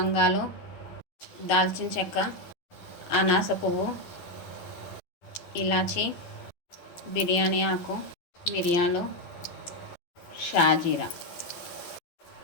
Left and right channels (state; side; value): late; right; 11 ms